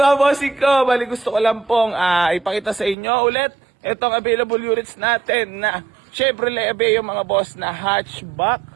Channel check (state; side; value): drops out; left; at 3.0 s